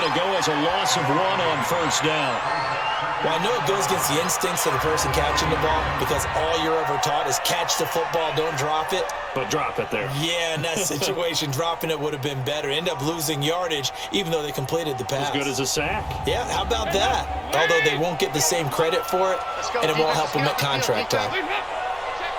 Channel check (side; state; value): both; identical; correlation 1.00